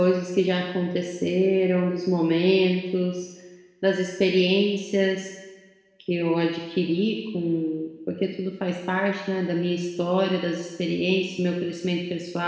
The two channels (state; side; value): identical; both; correlation 1.00